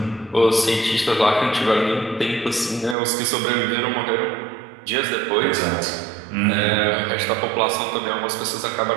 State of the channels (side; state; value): left; drops out; at 3.0 s